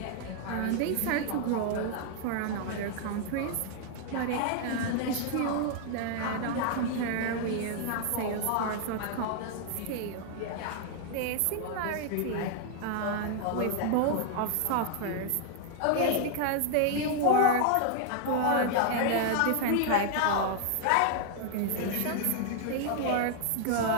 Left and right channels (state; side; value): different; both; correlation 0.00